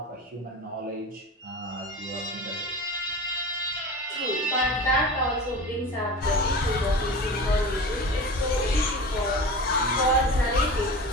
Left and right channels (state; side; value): normal; both; correlation 0.33